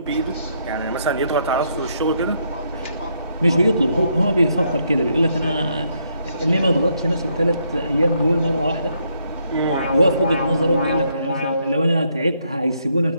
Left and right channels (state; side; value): inverted; both; correlation -0.74